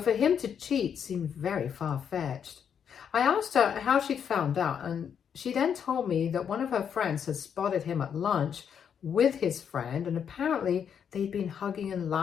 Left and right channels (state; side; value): quieter; right; 7.8 dB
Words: him to cheat seemed very far-fetched. I asked her how she'd found out, and she then told me that one of her friends had spotted him at lunch with his friend, and apparently they'd been hugging and